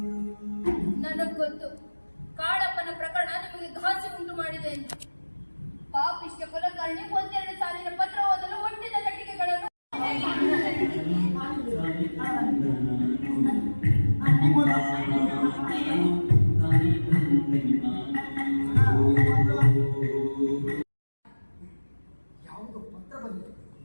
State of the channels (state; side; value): inverted; both; correlation -1.00